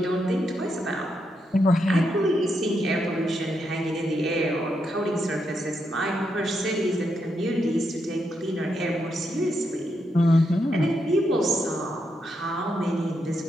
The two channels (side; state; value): both; normal; correlation 0.81